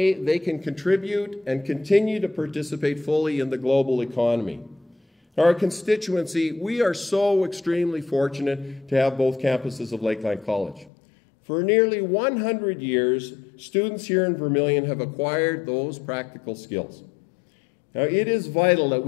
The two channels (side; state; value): right; drops out; at 10.9 s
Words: they can contribute and continue to participate fully in the global economy. Our constituency, we are so extremely fortunate to have both campuses of Lakeline College. For nearly 100 years, students here in Vermilion have acquired those practical skills. Now, it is vital that